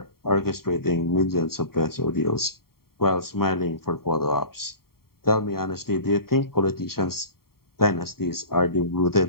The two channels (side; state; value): right; late; 0.93 ms